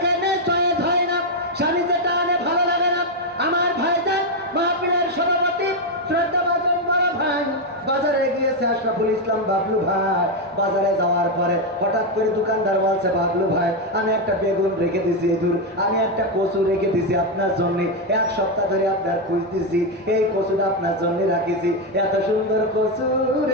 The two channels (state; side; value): normal; both; correlation 0.05